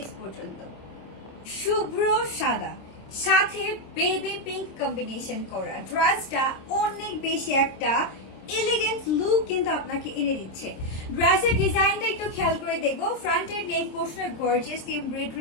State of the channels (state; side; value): late; right; 26 ms